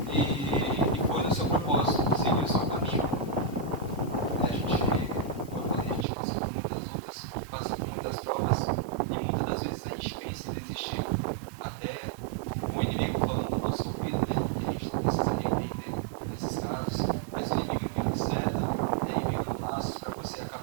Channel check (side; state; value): left; drops out; at 6.1 s